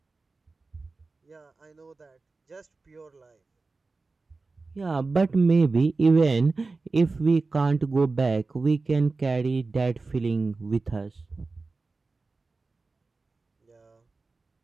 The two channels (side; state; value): left; quieter; 3.8 dB